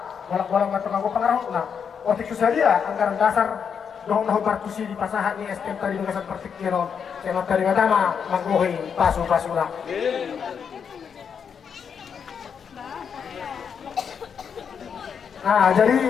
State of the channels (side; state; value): right; quieter; 7.0 dB